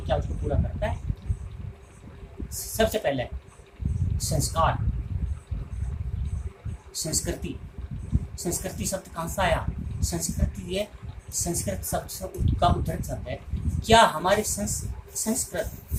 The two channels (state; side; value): identical; both; correlation 1.00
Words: उसको पूरा करता है? सबसे पहले संस्कार, संस्कृति। संस्कृति शब्द कहाँ से आया? संस्कृति ये संस्कृत शब्द का उद्धृत शब्द है। क्या हमारे संस्कृत,